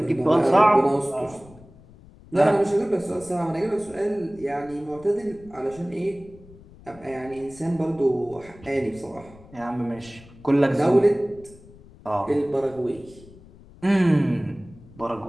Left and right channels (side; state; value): left; noise; rumble, 22 dB below the sound